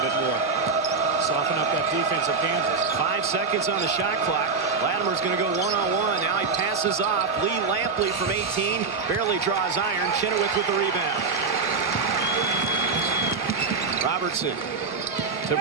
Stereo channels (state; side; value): quieter; left; 4.7 dB